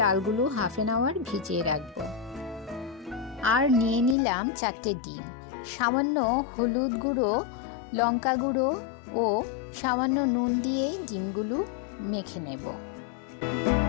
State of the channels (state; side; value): drops out; right; at 4.2 s